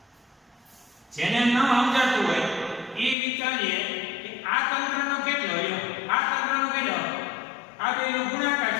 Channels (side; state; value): right; drops out; at 3.2 s